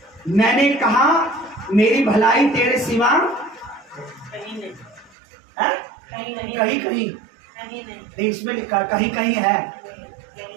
मैंने कहा मेरी भलाई तेरे सिवा कहीं नहीं है, कहीं कहीं नहीं, इसमें लिखा कहीं कहीं है,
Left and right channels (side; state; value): left; drops out; at 5.2 s